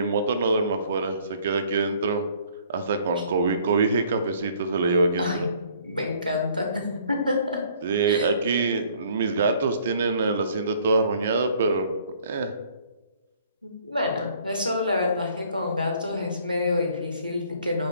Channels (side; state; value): both; inverted; correlation -0.59